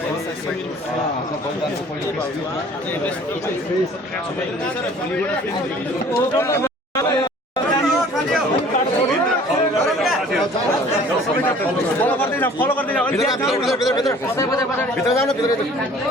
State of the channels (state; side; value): normal; both; correlation 0.51